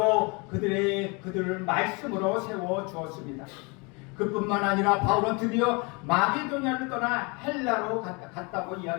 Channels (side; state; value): right; quieter; 29.7 dB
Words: 그들을 말씀으로 세워주었습니다. 그뿐만 아니라 바울은 드디어 마게도냐를 떠나 헬라로 갔다고